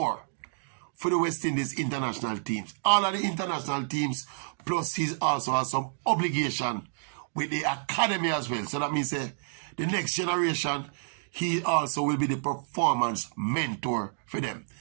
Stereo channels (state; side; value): silent; left; digital silence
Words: for the West Indies international teams. All of the international teams, plus he also has some obligation with the academy as well. So that means the next generation, he also will be the performance mentor for them.